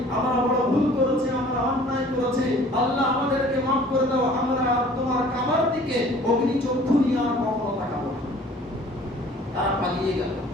আমরা বড় ভুল করেছি, আমরা অন্যায় করেছি, আল্লাহ আমাদেরকে মাফ করে দাও, আমরা আর তোমার কাবার দিকে অগ্নি চক্ষু নিয়ে আর কখনো তাকাবো না। তারা পালিয়ে গেল।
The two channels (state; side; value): normal; both; correlation 0.51